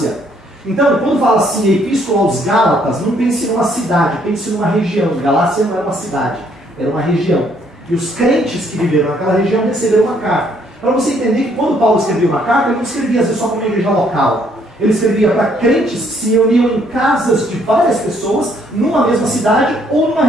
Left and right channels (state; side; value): normal; both; correlation 0.67